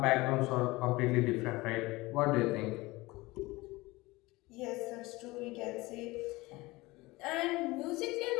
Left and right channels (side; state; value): right; quieter; 21.3 dB